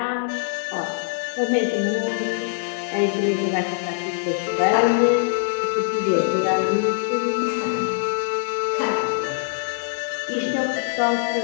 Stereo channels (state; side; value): silent; right; digital silence